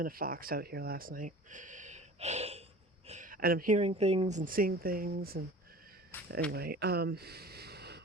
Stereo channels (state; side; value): normal; both; correlation 0.41